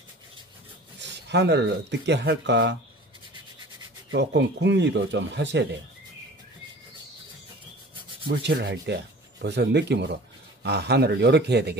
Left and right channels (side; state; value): both; normal; correlation 0.43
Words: 하늘을 어떻게 할까 조금 궁리도 좀 하셔야 돼요. 물칠을 할 때 벌써 느낌으로 아, 하늘을 이렇게 해야